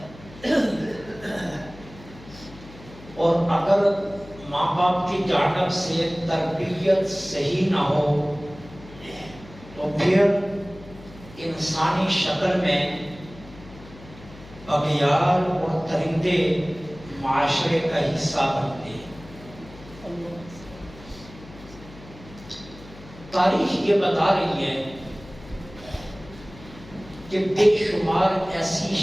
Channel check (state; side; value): noise; left; hum, 19 dB below the sound